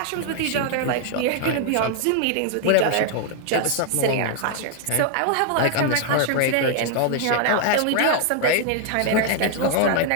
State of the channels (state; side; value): different; both; correlation 0.00